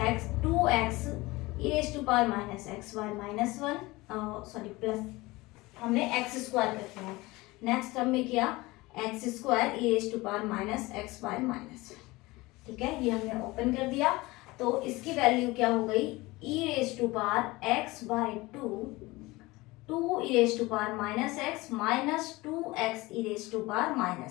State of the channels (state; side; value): quieter; right; 21.4 dB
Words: x 2x e raise to power minus x by minus 1 sorry plus हमने x square कर दिया। Next term में किया x square e raise to power minus x by minus, ठीक है, ये हमने ओपन कर दिया। तो इसकी वैल्यू क्या हो गई, e raise to power x by 2 e raise to power minus x minus 2x e raise to power